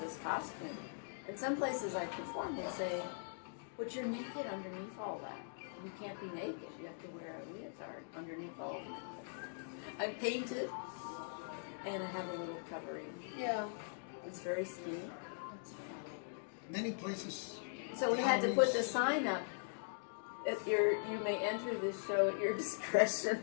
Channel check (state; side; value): silent; right; digital silence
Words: this costume. In some places I perform, they say, "But you're naked underneath all that. You can't be naked. You have to wear a leotard underneath all of that." I paint it, and I have a little covering. Yeah. It's very skinny. Many places. So we had to put the sign up. You may enter this show at your discretion.